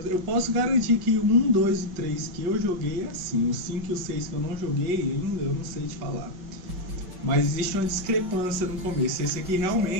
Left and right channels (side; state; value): left; late; 5.2 ms